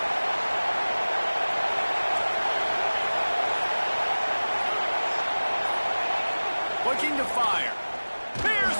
Looking to fire. Here's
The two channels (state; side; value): inverted; both; correlation -1.00